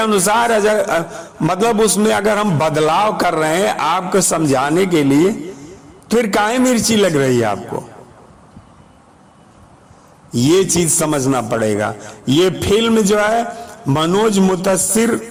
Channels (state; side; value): identical; both; correlation 1.00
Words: मतलब उसमें अगर हम बदलाव कर रहे हैं आपको समझाने के लिए, फिर काहे मिर्ची लग रही है आपको? ये चीज समझना पड़ेगा। ये फिल्म जो है मनोज मुतस्सिर